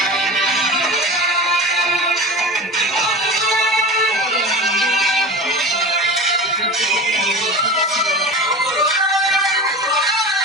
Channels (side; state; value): both; normal; correlation 0.31